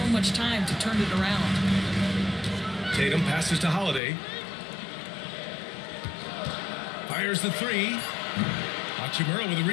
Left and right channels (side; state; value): right; drops out; at 4.0 s